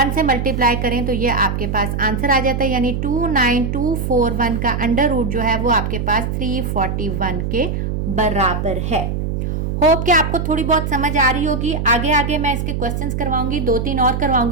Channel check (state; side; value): noise; right; hum, 2 dB below the sound